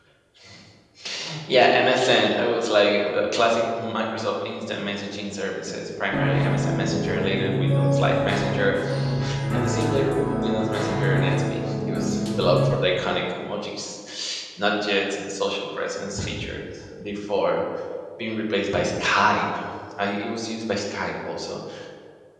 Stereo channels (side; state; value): both; identical; correlation 1.00